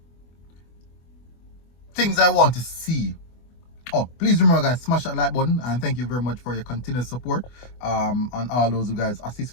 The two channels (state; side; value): late; right; 24 ms